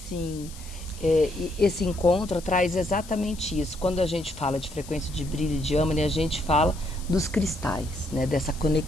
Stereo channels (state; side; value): noise; left; hiss, 18 dB below the sound